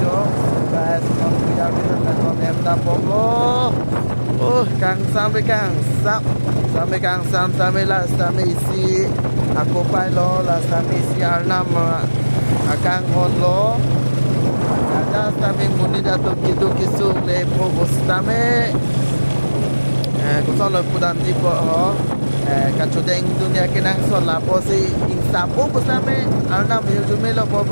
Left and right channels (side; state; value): both; inverted; correlation -1.00